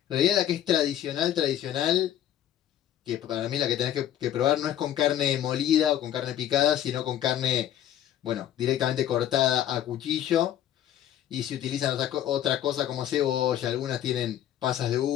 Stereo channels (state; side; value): quieter; right; 11.3 dB